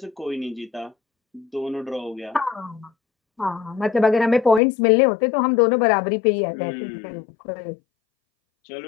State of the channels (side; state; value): right; drops out; at 4.6 s